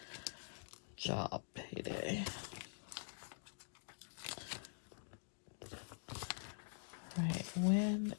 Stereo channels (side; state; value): right; silent; digital silence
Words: job payday. Right, when